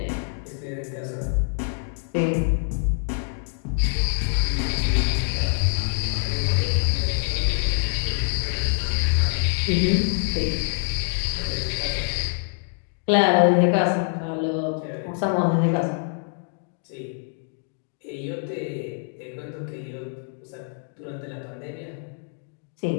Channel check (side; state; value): right; silent; 59 dB below the other